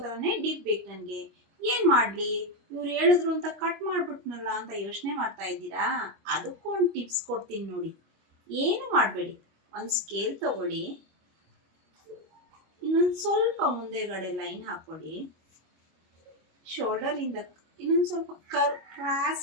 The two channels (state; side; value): late; left; 25 ms